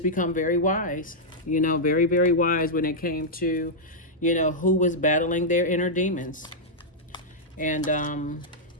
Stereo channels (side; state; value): both; normal; correlation -0.07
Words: become very wise, very, very wise when it came to, who was battling their inner demons. And,